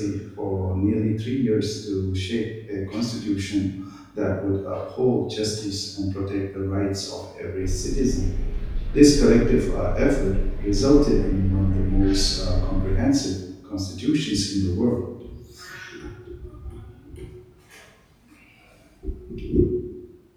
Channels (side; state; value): both; identical; correlation 1.00